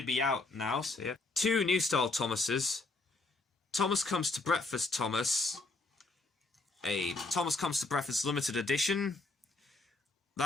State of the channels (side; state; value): right; quieter; 3.2 dB